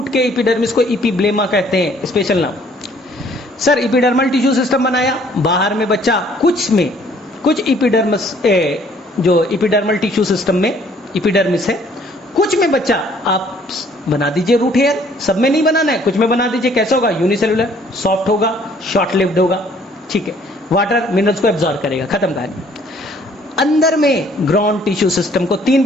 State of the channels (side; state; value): both; normal; correlation 0.60